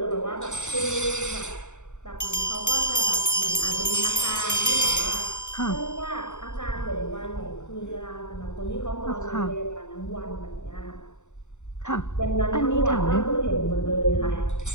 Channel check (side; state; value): right; late; 0.84 ms